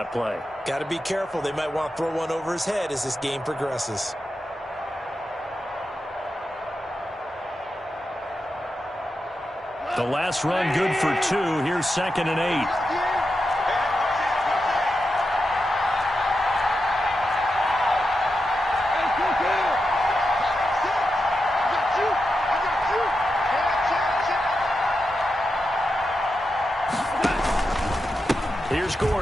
play. Got to be careful. They might want to throw one over his head as this game progresses. The last run good for 2. Here's 2nd and 8. Here's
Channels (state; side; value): normal; both; correlation 0.88